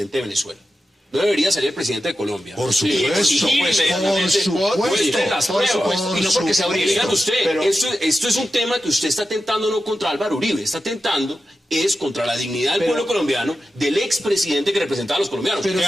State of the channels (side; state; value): both; normal; correlation 0.91